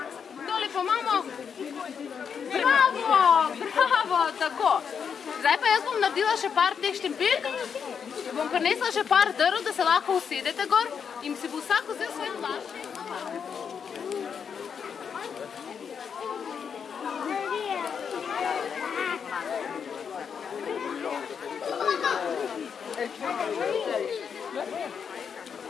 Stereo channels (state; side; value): quieter; right; 6.9 dB